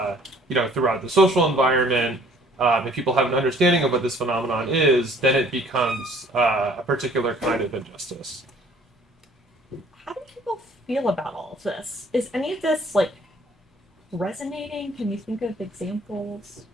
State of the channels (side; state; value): both; normal; correlation 0.56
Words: throughout the social environment, if people have an understanding of what this phenomenon is, then it becomes a particular kind of injustice. How do people feel about all of this? Is any of this like resonating? Can you think of examples?